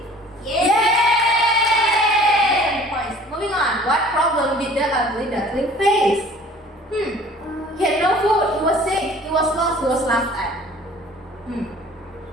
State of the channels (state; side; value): normal; both; correlation 0.50